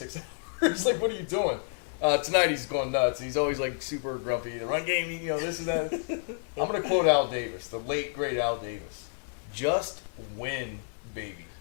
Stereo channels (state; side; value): silent; right; digital silence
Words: hours. Like, what are you doing? Tonight he's going nuts. He's always like super grumpy. The run game, this and that. I'm going to quote Al Davis, the late, great Al Davis. Just win, baby.